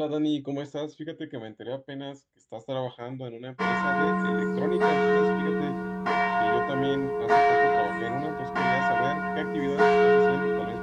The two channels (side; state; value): both; identical; correlation 1.00